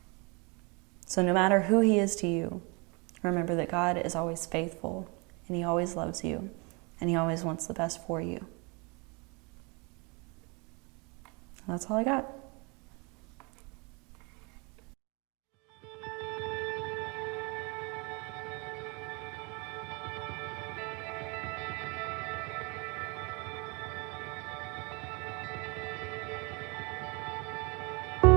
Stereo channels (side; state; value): left; quieter; 30.3 dB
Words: So no matter who He is to you, remember that God is always faithful, and He always loves you, and He always wants the best for you. That's all I got.